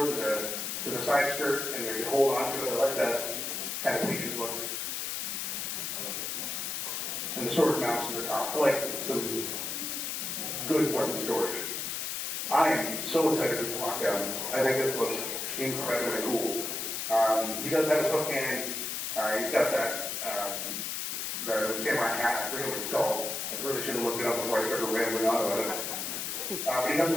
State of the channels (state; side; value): noise; left; hiss, 3 dB below the sound